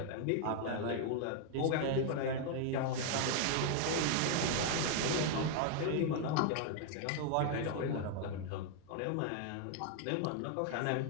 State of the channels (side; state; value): both; different; correlation 0.00